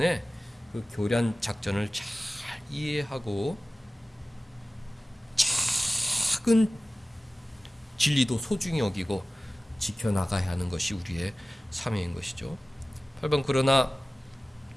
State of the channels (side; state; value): both; normal; correlation 0.97